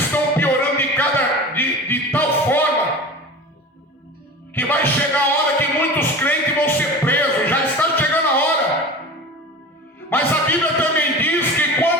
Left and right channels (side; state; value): both; normal; correlation 0.34